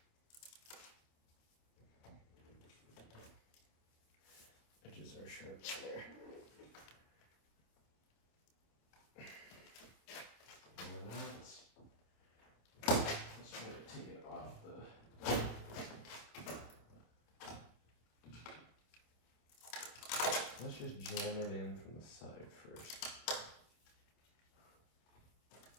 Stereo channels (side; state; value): right; late; 27 ms